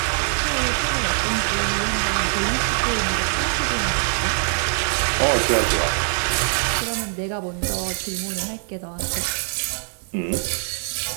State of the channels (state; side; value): silent; left; 62 dB below the other